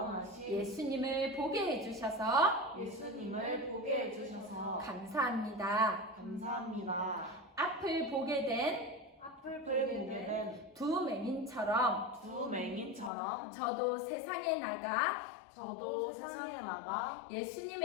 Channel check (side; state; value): right; drops out; at 13.1 s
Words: 예수님을 보게 해주셔서 예수님을 보게 해주셔서 감사합니다. 감사합니다. 앞을 보게 된 앞을 보게 된 두 맹인처럼 두 맹인처럼 저도 세상에 나가 저도 세상에 나가